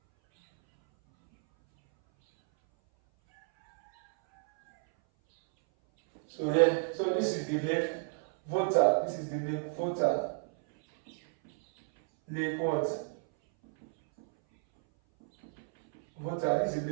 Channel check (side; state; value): left; silent; 57 dB below the other